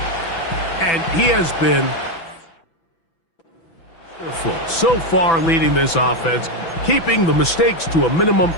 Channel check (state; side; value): late; right; 6.0 ms